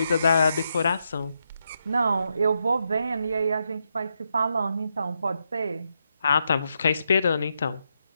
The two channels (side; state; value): both; inverted; correlation -0.83